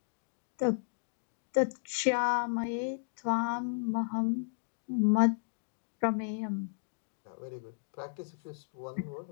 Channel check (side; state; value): right; silent; digital silence